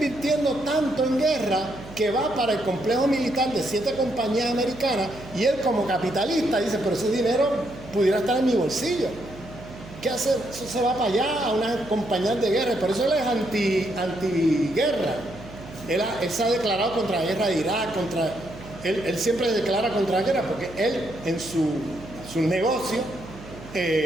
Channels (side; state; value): right; noise; hum, 16 dB below the sound